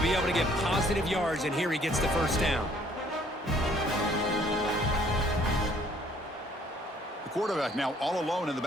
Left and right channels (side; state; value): both; normal; correlation 0.61